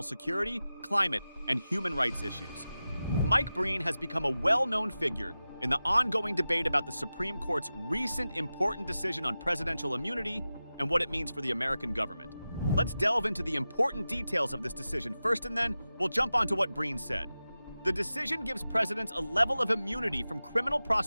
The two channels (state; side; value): inverted; both; correlation -0.94